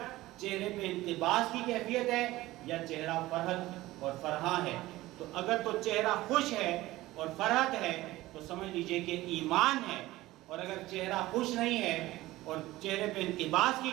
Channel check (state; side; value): quieter; left; 17.6 dB